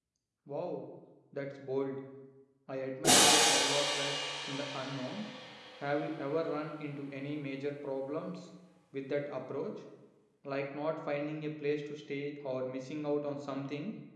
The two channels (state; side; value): identical; both; correlation 1.00